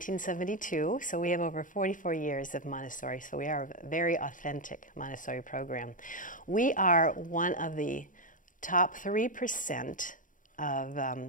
so we have over 44 years of Montessori, so we are a very authentic Montessori program. We are one of the top 3% of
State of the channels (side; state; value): right; late; 0.38 ms